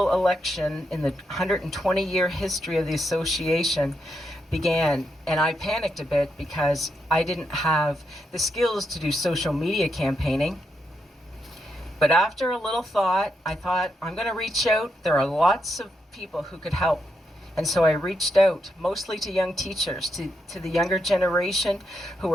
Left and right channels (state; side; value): normal; both; correlation 0.82